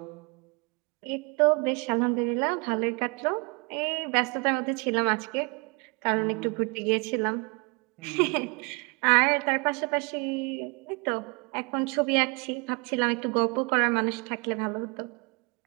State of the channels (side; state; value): left; quieter; 32.2 dB